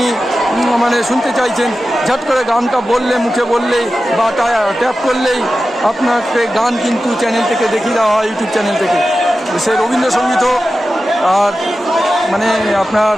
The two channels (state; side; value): normal; both; correlation 0.93